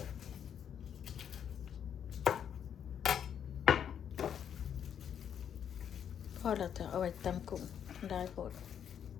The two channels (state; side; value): quieter; right; 8.6 dB